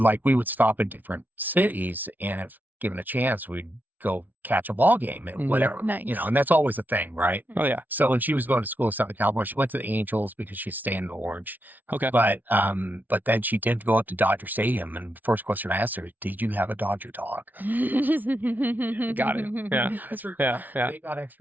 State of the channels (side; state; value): left; late; 0.081 ms